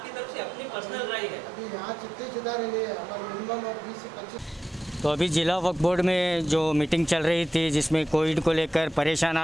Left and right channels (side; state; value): both; normal; correlation 0.89